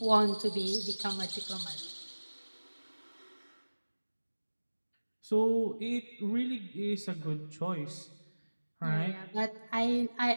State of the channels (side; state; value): both; inverted; correlation -1.00